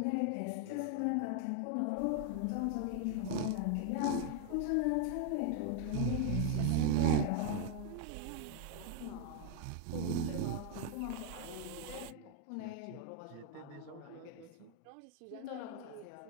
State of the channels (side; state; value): both; different; correlation 0.00